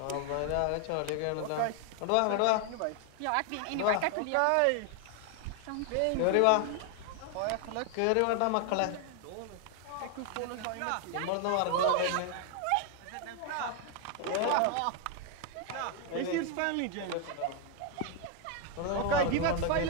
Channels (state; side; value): different; both; correlation 0.00